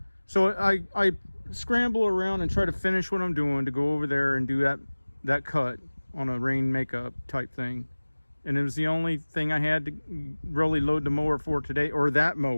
So I scramble around and try to finish what I'm doing to go over there and do that cut on a rain makeup type thing. And it was the only thing I had to really load the mower for today, or that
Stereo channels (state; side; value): inverted; both; correlation -1.00